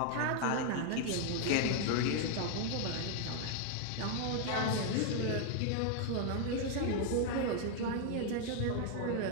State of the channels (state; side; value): different; both; correlation 0.00